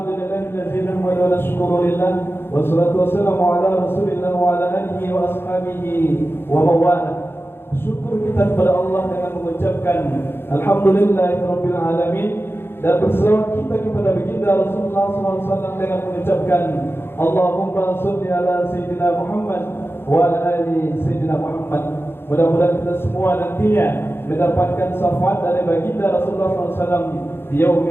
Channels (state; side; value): late; right; 0.11 ms